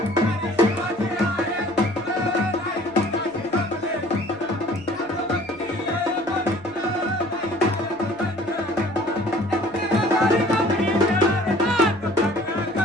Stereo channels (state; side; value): noise; right; hum, 27 dB below the sound